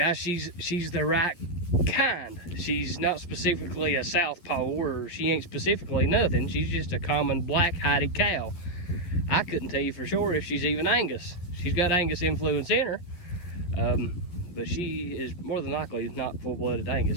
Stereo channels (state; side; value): late; right; 12 ms